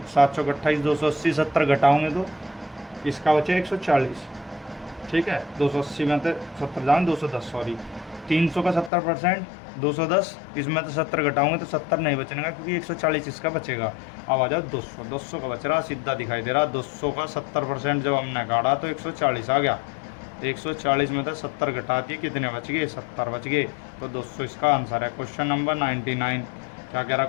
728 280 70 घटाओगे तो इसका बचे 140। ठीक है, 280 में तो 70 जाएंगे 210, सॉरी 300 का 70% 210, इसमें तो 70 घटाओगे तो 70 नहीं बचेगा क्योंकि 140 इसका बचेगा। अब आ जाओ 200, 200 का बच रहा, सीधा दिखाई दे रहा। 200 का 70% जब हमने काटा तो 140 आ गया। 140 में तो 70 घटा दिए, कितने बच गए 70 बच गए, तो 200 इसका आंसर है। क्वेश्चन नंबर 99 क्या कह रहा है,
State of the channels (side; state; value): right; drops out; at 8.9 s